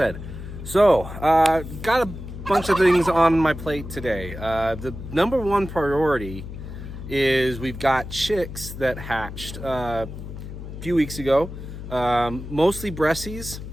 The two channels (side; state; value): left; noise; hum, 10 dB below the sound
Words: So, got a bunch of things on my plate today. The number one priority is we've got chicks that hatched a few weeks ago, mostly Bressies